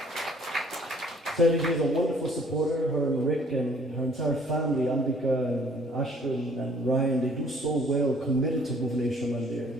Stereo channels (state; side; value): normal; both; correlation 0.58